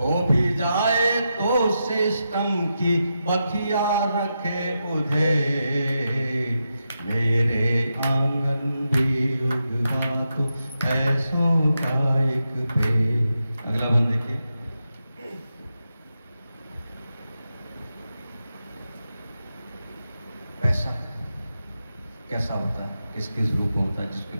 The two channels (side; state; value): both; inverted; correlation -0.87